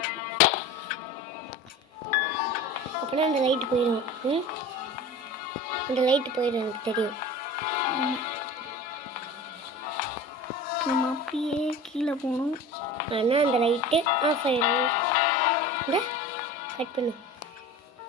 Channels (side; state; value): both; normal; correlation 0.36